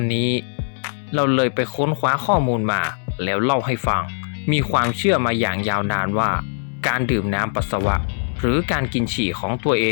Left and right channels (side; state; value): right; silent; 65 dB below the other